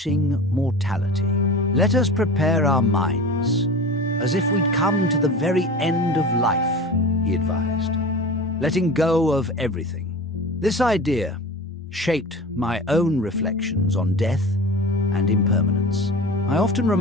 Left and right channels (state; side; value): normal; both; correlation 0.35